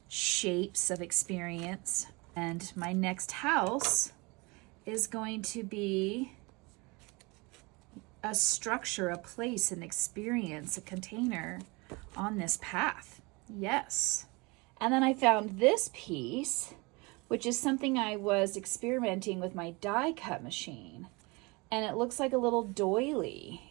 shapes of experience. And my next house is going to be a structure, a place, an experience, a container on this path. Yes. And then I found this piece, which is something I was experimenting with my die cut machine. And it looks like a little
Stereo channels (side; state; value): left; quieter; 26.6 dB